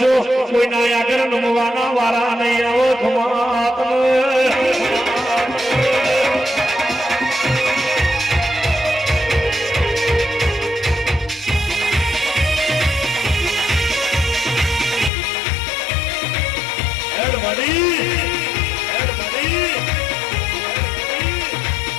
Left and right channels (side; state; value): right; drops out; at 15.1 s